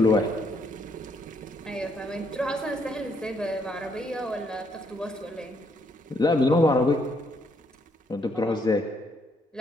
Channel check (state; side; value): normal; both; correlation 0.72